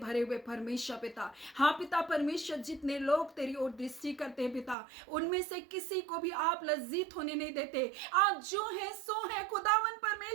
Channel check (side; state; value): left; drops out; at 4.8 s